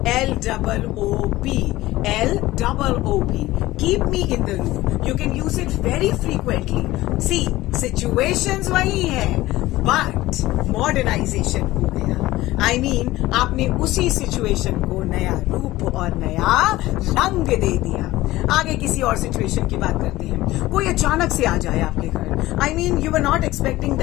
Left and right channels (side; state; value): right; quieter; 17.3 dB